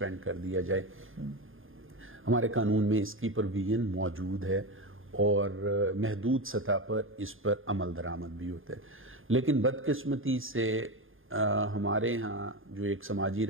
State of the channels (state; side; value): late; left; 0.59 ms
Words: کر دیا جائے، ہمارے قانون میں اس کی پروویژن موجود ہے اور محدود سطح پر اس پر عمل درآمد بھی ہوتا ہے. لیکن بدقسمتی سے ہمارے ہاں جو ایک سماجی